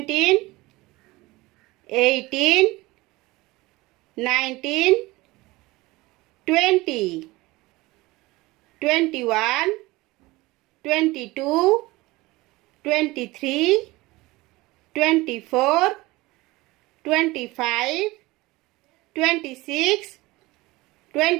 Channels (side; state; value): left; quieter; 20.7 dB